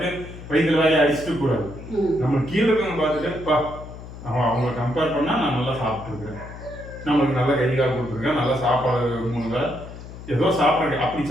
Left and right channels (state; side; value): noise; left; hum, 13 dB below the sound